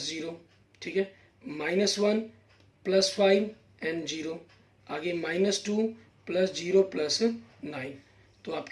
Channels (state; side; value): identical; both; correlation 1.00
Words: 0। ठीक है, माइनस 1 प्लस 5 एंड 0। आगे माइनस 2 प्लस 0 प्लस 9। तो